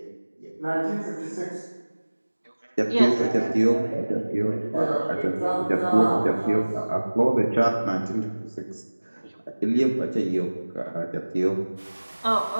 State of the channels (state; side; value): inverted; both; correlation -1.00